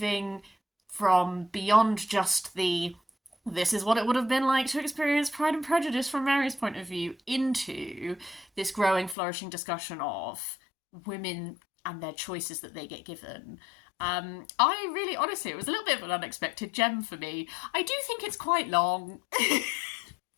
from beyond just this is what it would have been like to experience Pride and Prejudice from Mary's point of view into this growing, flourishing discussion of women and their choices that they get given. I really, honestly, it was a little bit of an unexpected gem for me. I do think it's quite long.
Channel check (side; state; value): right; drops out; at 9.2 s